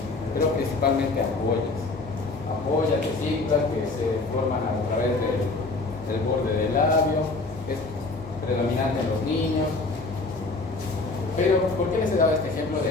pero principalmente ampollas. Ampollas, vesículas que se forman a través del borde del labio, es predominante en los niños. Pero, ¿por qué les he dado este ejemplo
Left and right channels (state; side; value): quieter; right; 3.5 dB